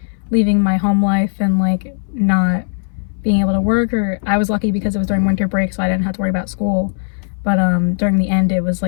leaving my home life and like not being able to work, or I was lucky because it was during winter break, so I didn't have to worry about school. But during the end, it was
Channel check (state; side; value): silent; right; 64 dB below the other